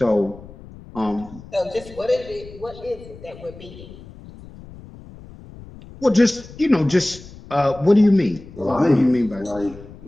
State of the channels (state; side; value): noise; left; rumble, 18 dB below the sound